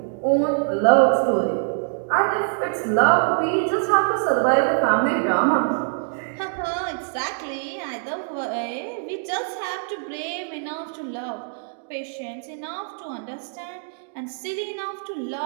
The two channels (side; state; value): left; silent; digital silence